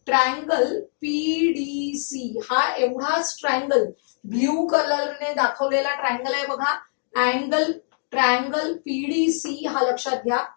ट्रायंगल पीडीसी, हा एवढाच ट्रायंगल ब्ल्यू कलरने दाखवलेला ट्रायंगल आहे. बघा, ट्रायंगल पीडीसी हा लक्षात घ्या.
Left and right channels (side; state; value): right; silent; digital silence